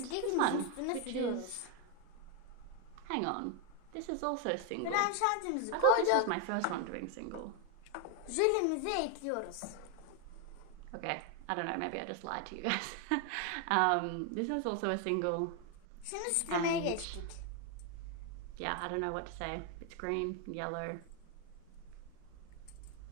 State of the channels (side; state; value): both; different; correlation 0.01